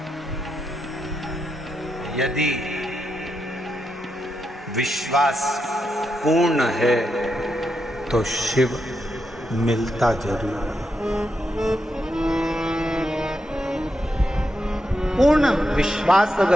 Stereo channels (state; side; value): normal; both; correlation 0.85